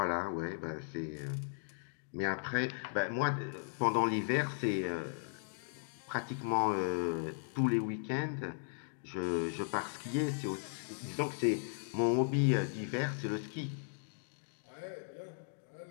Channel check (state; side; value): silent; right; digital silence